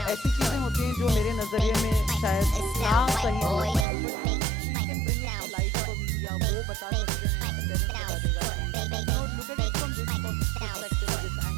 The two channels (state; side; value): drops out; left; at 3.9 s